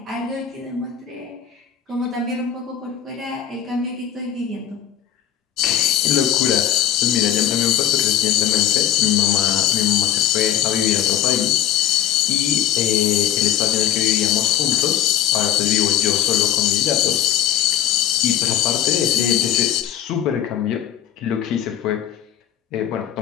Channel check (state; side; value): quieter; right; 10.7 dB